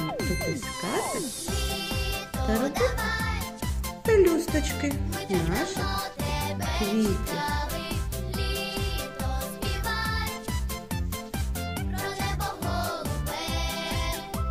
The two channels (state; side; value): identical; both; correlation 1.00